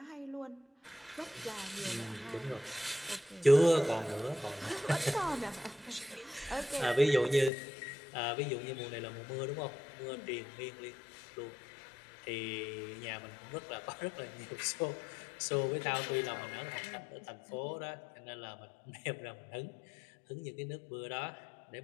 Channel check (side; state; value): right; drops out; at 7.5 s